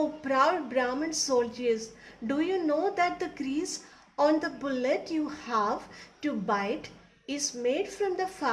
proud Brahmin soldiers, do you know that the grease on the bullet you have to bite is made from the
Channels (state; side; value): identical; both; correlation 1.00